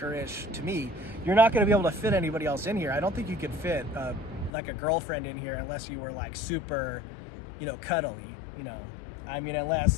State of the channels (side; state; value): right; drops out; at 4.5 s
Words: to me. You're not gonna be able to fit anybody else in here. I don't think you could fit like a girlfriend in here unless you were like super, you know, cuddly, you know. I mean,